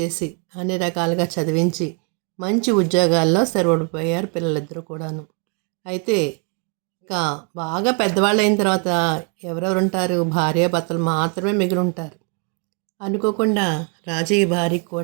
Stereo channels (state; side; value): quieter; left; 38.3 dB